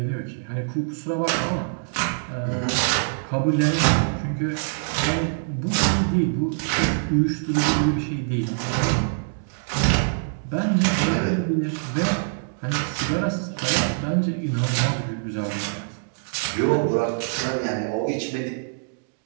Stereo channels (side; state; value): left; silent; digital silence